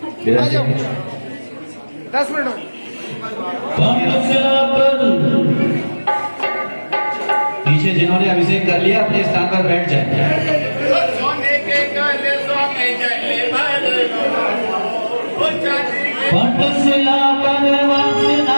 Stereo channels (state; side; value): inverted; both; correlation -1.00